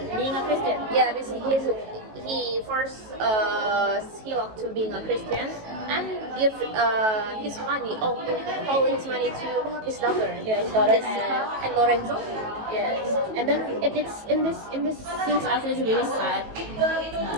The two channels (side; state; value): left; late; 18 ms